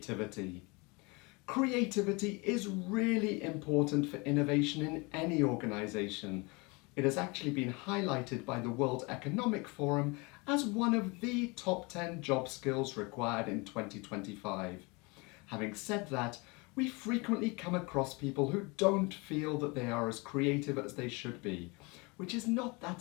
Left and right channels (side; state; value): right; quieter; 27.6 dB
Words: Creativity is really important for innovation in any organisation. It has actually been highlighted by the World Economic Forum as one of the top 10 job skills required in 2025. Having said that, we frequently come across people who don't feel that they are as creative as they should be, which is not that